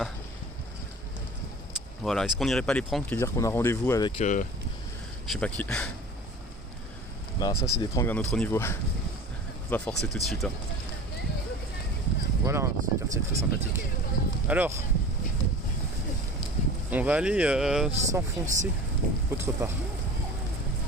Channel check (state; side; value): normal; both; correlation 0.39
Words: Voilà, est-ce qu'on n'irait pas les pranks et dire qu'on a rendez-vous avec je sais pas qui? Bah ça c'est des pranks d'un autre niveau. On va forcer tout de suite, hein. Voilà, ce quartier est très sympathique. Alors, on va aller s'enfoncer autre part.